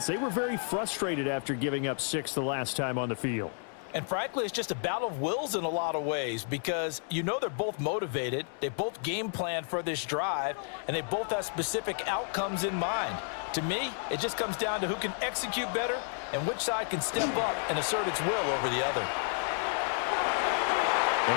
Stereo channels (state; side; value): silent; right; 57 dB below the other